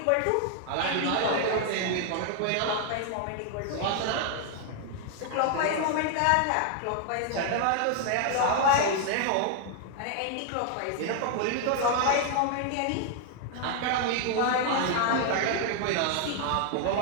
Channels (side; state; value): both; different; correlation 0.00